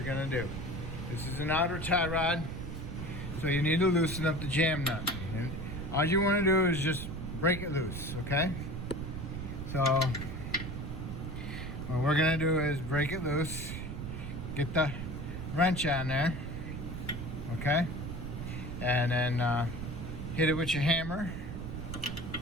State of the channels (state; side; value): noise; right; rumble, 6 dB below the sound